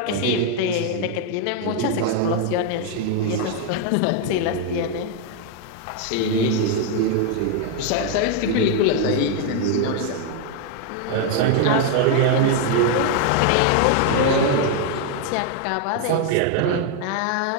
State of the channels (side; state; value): both; different; correlation 0.01